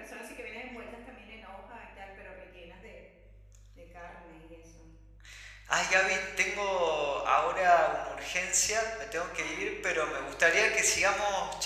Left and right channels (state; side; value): identical; both; correlation 1.00